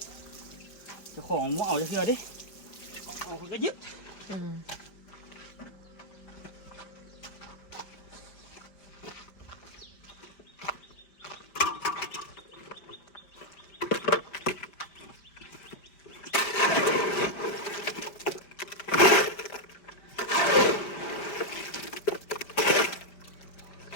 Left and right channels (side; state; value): right; late; 5.1 ms